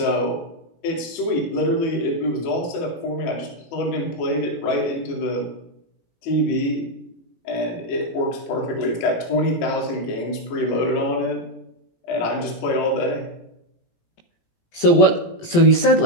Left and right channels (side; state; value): right; late; 18 ms